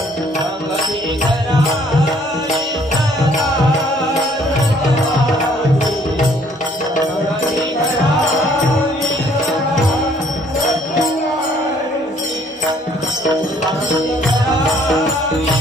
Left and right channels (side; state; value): both; normal; correlation 0.61